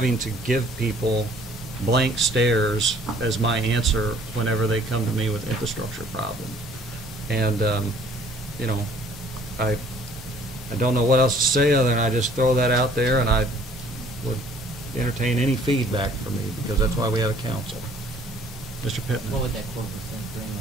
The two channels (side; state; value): both; normal; correlation 0.57